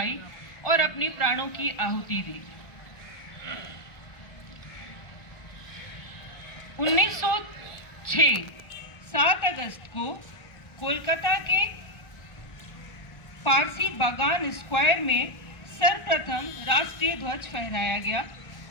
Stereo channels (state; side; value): late; right; 1.4 ms